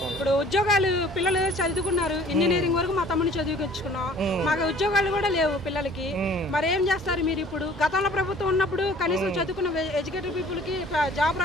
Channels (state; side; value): normal; both; correlation 0.52